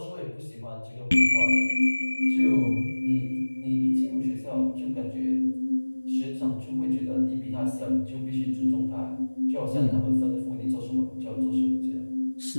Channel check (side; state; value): both; inverted; correlation -1.00